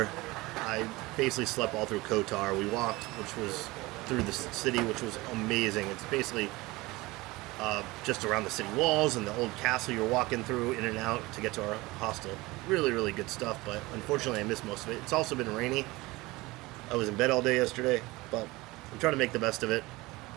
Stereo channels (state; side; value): quieter; left; 21.3 dB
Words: I basically slept all through Kotar. We walked, which was through the city, which was amazing. It's basically just around the city walls and the old castle you're walking through in and out to get to our hostel. Really, really good stuff, but unfortunately I missed most of it. It's also been rainy. I was in bed all day yesterday, but I'm trying to make the best of it.